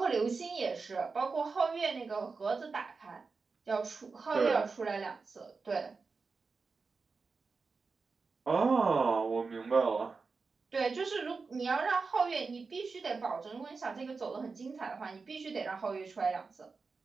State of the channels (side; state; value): left; quieter; 4.5 dB